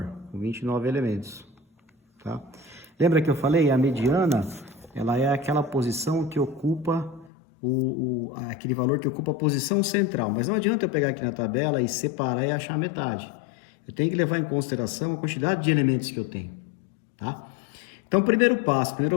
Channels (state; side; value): drops out; right; at 7.3 s